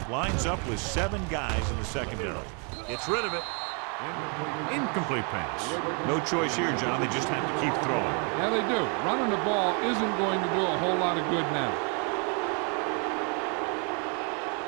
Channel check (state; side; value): quieter; left; 37.2 dB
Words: lines up with 7 guys in the secondary. Gets rid of it. Incomplete pass. No choice here, John. They just have to keep throwing. Yeah, they do. Running the ball isn't going to do a whole lot of good now.